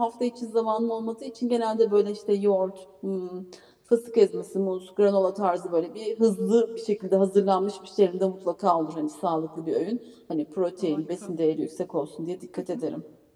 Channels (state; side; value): identical; both; correlation 1.00